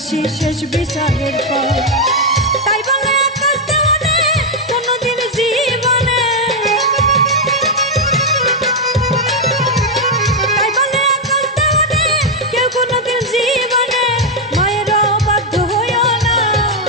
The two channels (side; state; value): both; normal; correlation 0.01